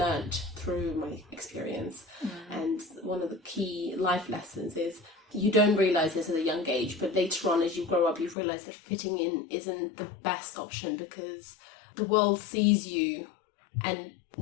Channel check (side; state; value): right; drops out; at 8.3 s